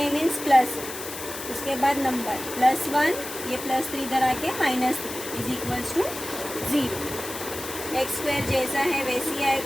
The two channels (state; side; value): noise; left; hiss, 9 dB below the sound